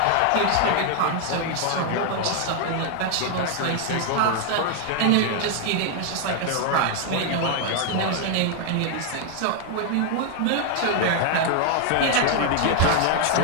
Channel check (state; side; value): different; both; correlation 0.00